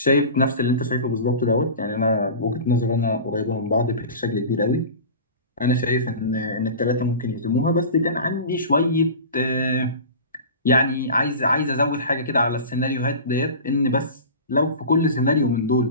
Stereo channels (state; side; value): inverted; both; correlation -0.34